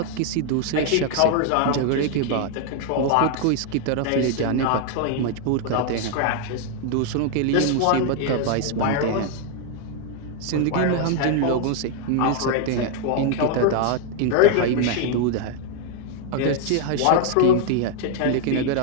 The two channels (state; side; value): different; both; correlation 0.00